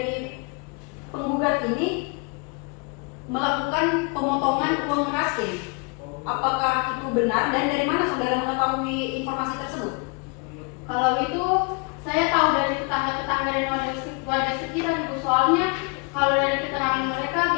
penggugat ini melakukan pemotongan uang raskin. Apakah itu benar dan dari mana saudara mengetahui informasi tersebut? Kalau itu saya tahu dari tetangga-tetangga dan warga sekitar Ibu, soalnya kalau dari keterangan mereka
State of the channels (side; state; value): right; quieter; 33.3 dB